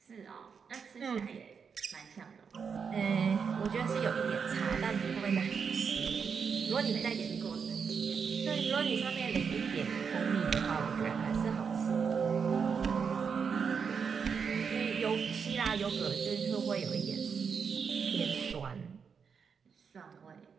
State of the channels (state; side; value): quieter; left; 6.2 dB